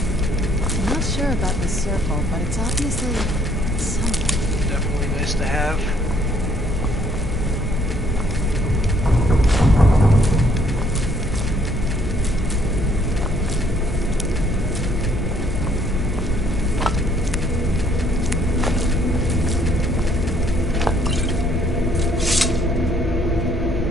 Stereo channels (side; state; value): both; normal; correlation 0.64